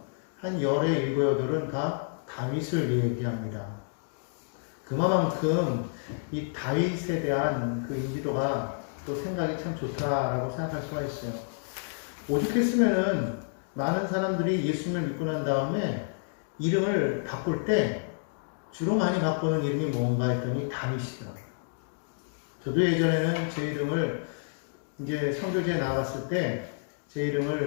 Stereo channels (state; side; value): silent; right; digital silence